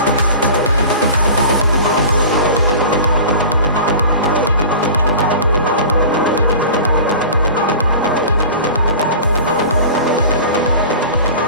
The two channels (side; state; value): both; inverted; correlation -0.37